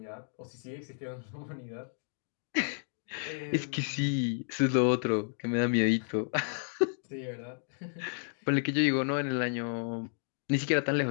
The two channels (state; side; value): silent; right; digital silence